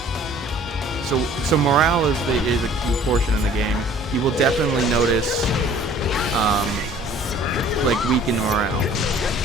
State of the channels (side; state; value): both; normal; correlation 0.52